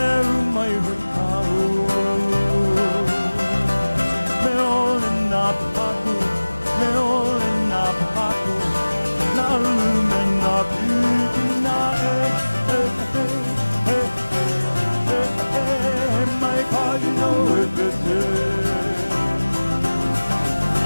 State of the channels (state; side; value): inverted; both; correlation -1.00